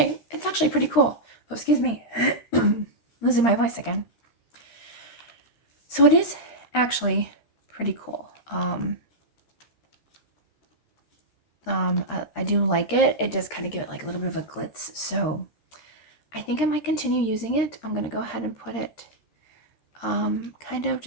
it's actually pretty cool. Oh, excuse me. Losing my voice again. So it is actually pretty cool. I do like it. It does kind of give it like a little bit of a glitz. So I think I might continue using it. I'm going to go ahead and put it kind of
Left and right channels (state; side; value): late; right; 13 ms